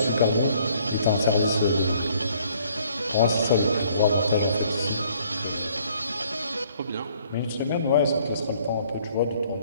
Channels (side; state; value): both; inverted; correlation -0.62